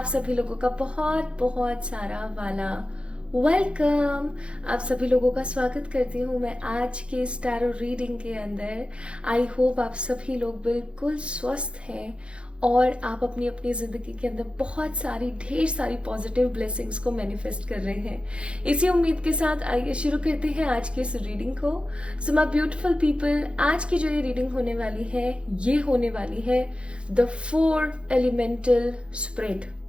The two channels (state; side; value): late; left; 0.058 ms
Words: सभी लोगों का बहुत बहुत सारा वाला वेलकम। आप सभी लोगों का स्वागत करती हूँ मैं आज के स्टारो रीडिंग के अंदर। आई होप आप सभी लोग बिल्कुल स्वस्थ हैं और आप अपनी अपनी जिंदगी के अंदर बहुत सारी ढेर सारी पॉजिटिव ब्लेसिंग्स को मैनिफेस्ट कर रहे हैं। इसी उम्मीद के साथ आइए शुरू करते हैं आज की इस रीडिंग को। सो माय ब्यूटीफुल पीपल, आज की जो ये रीडिंग होने वाली है ये होने वाली है द 4 एलिमेंटल स्प्रेड।